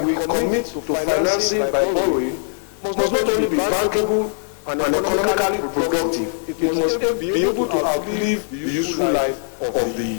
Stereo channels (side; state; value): right; silent; digital silence